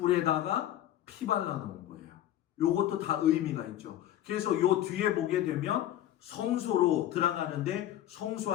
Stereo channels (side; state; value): right; quieter; 12.6 dB